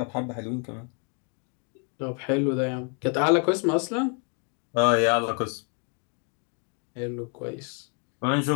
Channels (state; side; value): quieter; right; 39.3 dB